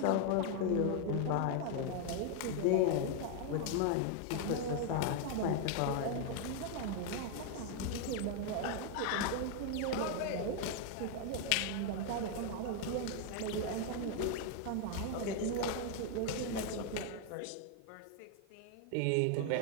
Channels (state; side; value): different; both; correlation 0.00